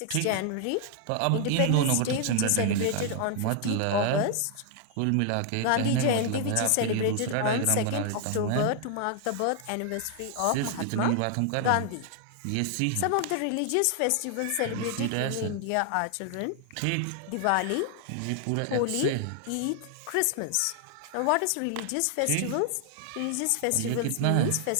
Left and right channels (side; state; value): both; different; correlation 0.00